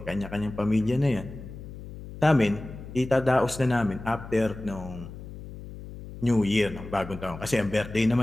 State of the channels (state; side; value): noise; left; hum, 13 dB below the sound